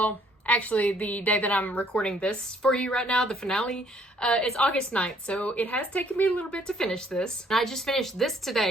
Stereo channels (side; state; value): both; normal; correlation 0.64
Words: actually, the day that I'm recording this for you right now, the finale, it's August 9th, so it has taken me a little bit to finish this. And I just finished this